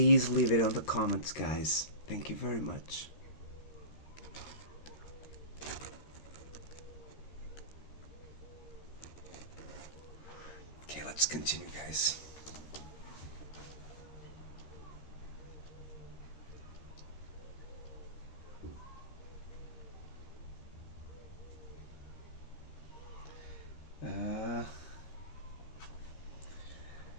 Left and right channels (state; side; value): late; right; 13 ms